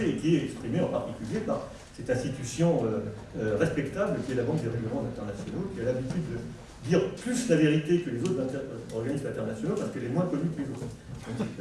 et qui est exprimée en particulier par cette institution respectable qui est la Banque des règlements internationaux, qui a l'habitude de dire plus la vérité que les autres organismes internationaux parce qu'elle est moins connue que les autres. Donc,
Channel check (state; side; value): identical; both; correlation 1.00